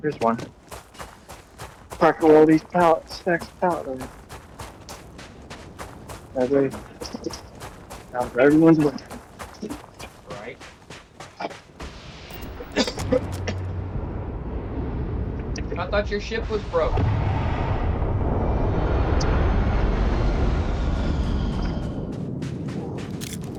one. Park all these pallets, stacks of pallets. That way, now for everyone's way. Right. I thought your ship was broke.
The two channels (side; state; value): both; identical; correlation 1.00